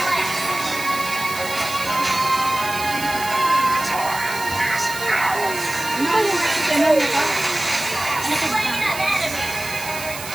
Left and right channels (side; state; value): right; noise; hiss, 10 dB below the sound